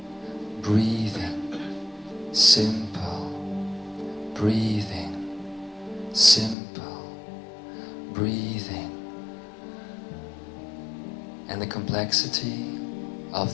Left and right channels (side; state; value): right; drops out; at 6.6 s